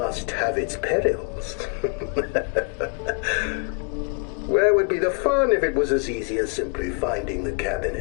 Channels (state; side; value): quieter; right; 38.5 dB